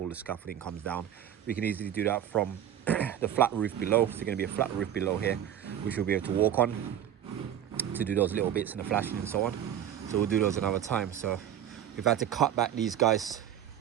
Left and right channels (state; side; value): quieter; left; 10.3 dB